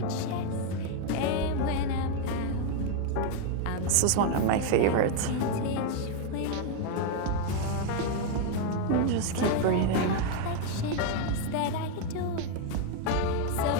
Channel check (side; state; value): both; different; correlation 0.01